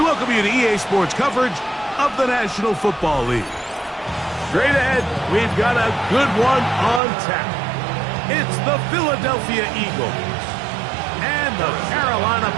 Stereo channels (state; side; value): drops out; left; at 7.0 s